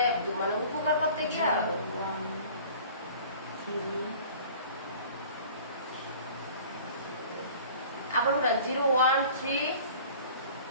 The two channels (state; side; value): inverted; both; correlation -0.45